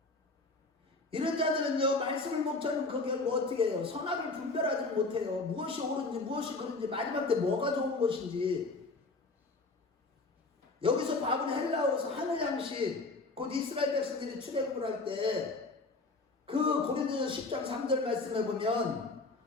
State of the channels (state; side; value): quieter; right; 3.6 dB